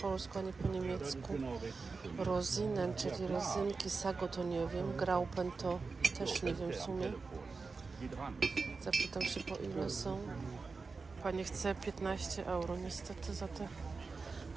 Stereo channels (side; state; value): left; quieter; 4.4 dB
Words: ani po niemiecku. Rosinen, czyli rezynki, Sago to nie wiem, Graupen to też nie wiem w sumie. Zapytam się, po ile są. Pani chce 15 euro niestety za te